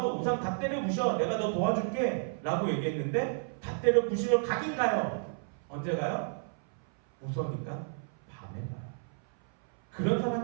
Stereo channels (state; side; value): silent; left; 57 dB below the other